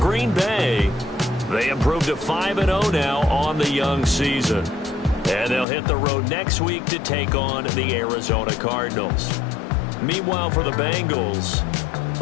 Bay, they improved to 5-0 now on the young season. And they'll hit the road next week to take on the Arizona Cardinals. Meanwhile, for the Bengals,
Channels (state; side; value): drops out; right; at 5.7 s